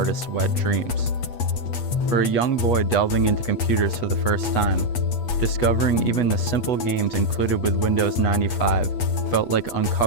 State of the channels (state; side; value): late; right; 8.3 ms